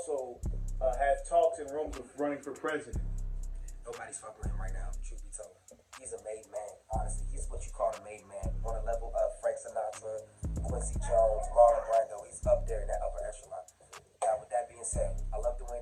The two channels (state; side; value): identical; both; correlation 1.00